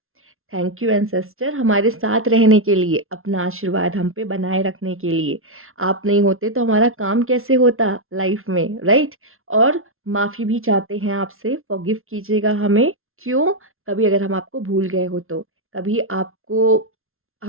थैंक यू एंसेस्टर, हमारे साथ रहने के लिए, अपना आशीर्वाद हम पे बनाए रखने के लिए। आप नहीं होते तो हमारा काम कैसे होता लाइफ में, राइट। और माफ़ी भी चाहते हैं आपसे, फॉरगिव कीजिएगा हमें। क्यों? कभी अगर हम आपको भूल गए हो तो, कभी आपको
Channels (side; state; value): left; late; 0.61 ms